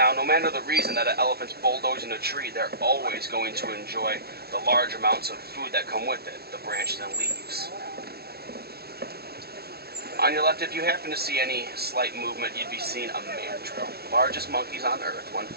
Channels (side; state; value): left; late; 0.46 ms